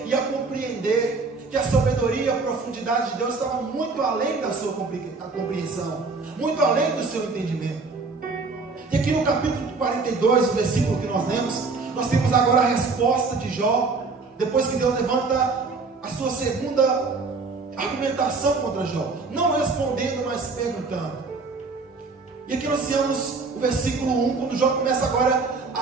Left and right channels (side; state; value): left; quieter; 4.1 dB